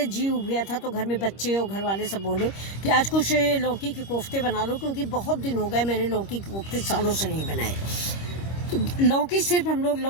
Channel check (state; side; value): late; right; 25 ms